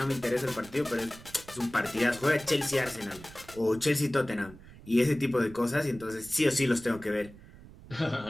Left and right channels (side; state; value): right; noise; rumble, 19 dB below the sound